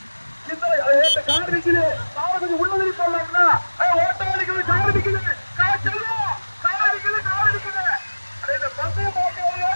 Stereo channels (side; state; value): both; inverted; correlation -1.00